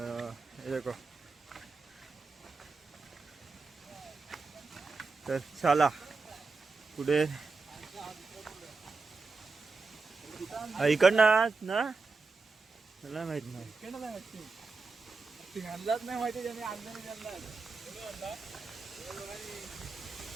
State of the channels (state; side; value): quieter; left; 4.2 dB